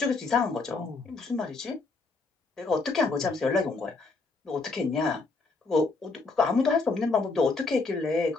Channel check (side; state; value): right; quieter; 3.9 dB